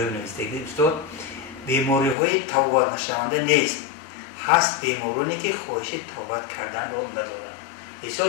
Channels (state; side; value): drops out; right; at 2.1 s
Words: نوشته استاد بیماری های توبات نشونده نیست. هست بیمارانی که خواهش توبت کردن رو ندارن.